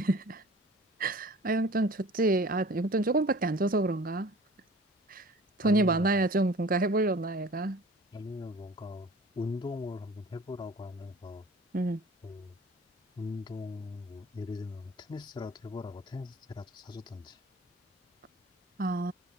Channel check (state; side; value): normal; both; correlation 0.45